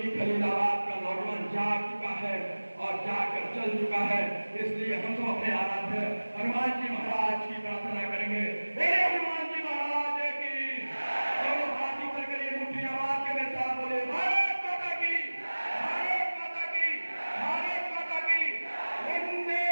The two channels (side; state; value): both; inverted; correlation -1.00